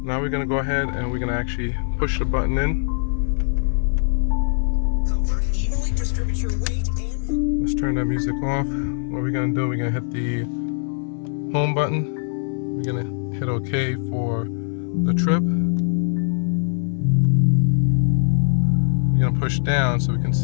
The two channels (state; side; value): silent; right; digital silence